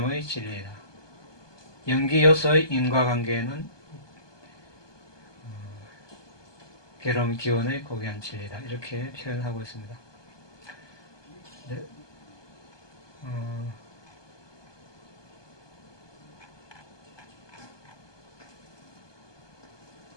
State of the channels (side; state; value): right; late; 1.2 ms